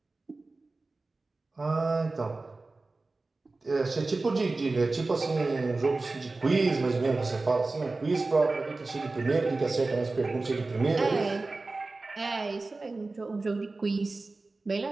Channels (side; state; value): left; quieter; 3.4 dB